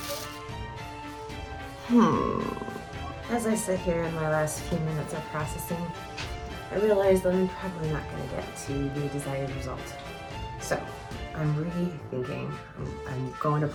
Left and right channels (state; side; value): identical; both; correlation 1.00